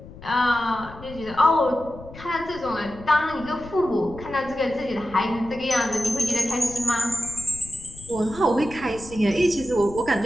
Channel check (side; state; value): left; noise; rumble, 16 dB below the sound